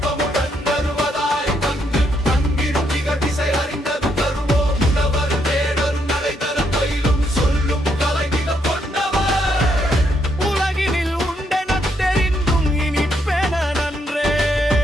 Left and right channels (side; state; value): both; normal; correlation 0.75